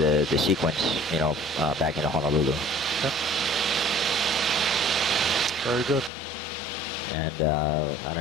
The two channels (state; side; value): drops out; right; at 6.1 s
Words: sequence, back into Honolulu. Okay. Very good. And I